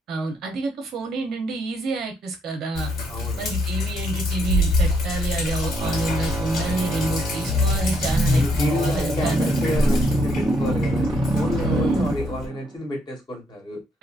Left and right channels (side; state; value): both; normal; correlation 0.72